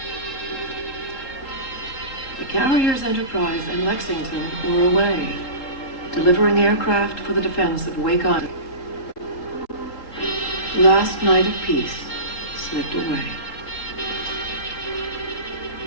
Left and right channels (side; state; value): right; late; 3.8 ms